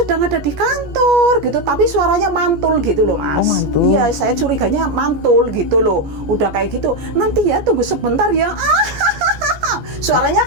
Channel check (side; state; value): left; late; 14 ms